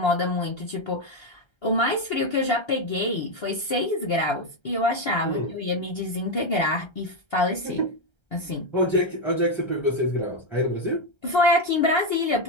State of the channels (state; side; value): late; right; 1.3 ms